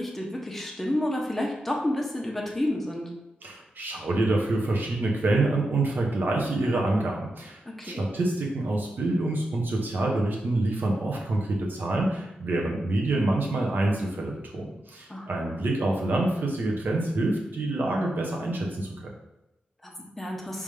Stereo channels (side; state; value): both; normal; correlation 0.87